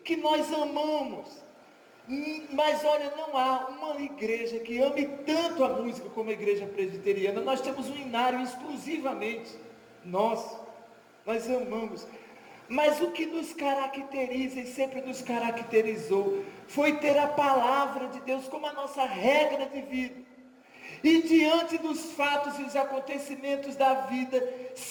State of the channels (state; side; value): identical; both; correlation 1.00